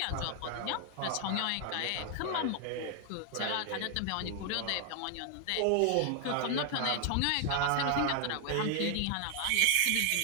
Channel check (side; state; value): both; different; correlation 0.00